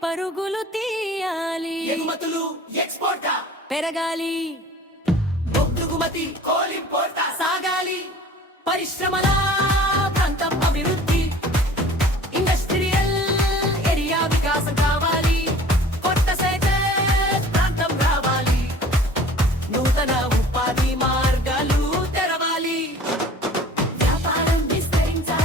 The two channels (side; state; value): both; normal; correlation 0.46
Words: పరుగులు తీయాలి ఎగుమతులు ఎక్స్పోర్టా పెరగాలి బొగ్గుమతి కోలింపోర్టా సాగాలి పరిశ్రమల ప్రాంతం అభివృద్ధి ఇండస్ట్రియల్ ఏరియా వికాసం కావాలి కొత్త సెక్టర్ ప్రాంతం రావాలి నూతన ఉపాధి మార్గాలు తెరవాలి వ్యాపారం